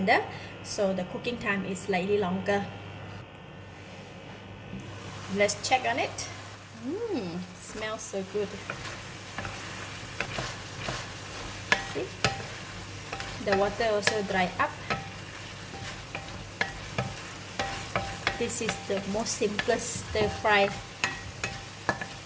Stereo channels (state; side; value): identical; both; correlation 1.00